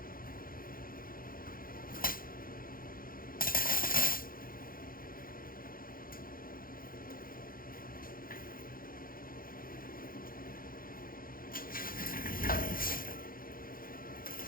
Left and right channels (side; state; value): right; late; 0.42 ms